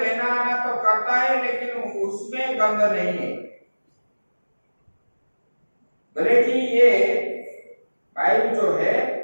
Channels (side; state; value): both; inverted; correlation -1.00